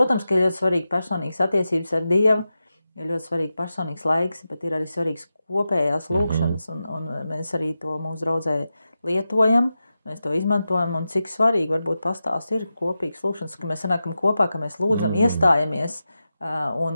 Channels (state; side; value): inverted; both; correlation -0.91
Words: ka ir ļoti svarīgi personīgas attiecības ar Dievu, ir ļoti svarīgi personīgs laiks, bet ir arī svarīgs kopējās lūgšanas, un mēs arī to mūsu draudzē lietojam, mēs to izmantojam, un cik svarīgi varbūt pastāst ir kopīgas lūgšanas, ka mēs sanākam kopā, ka mēs lūdzam, iestājamies, un